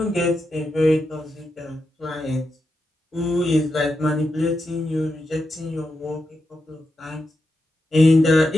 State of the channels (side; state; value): both; normal; correlation 0.86